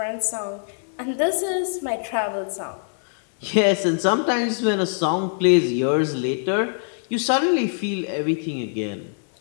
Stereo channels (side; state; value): right; silent; 63 dB below the other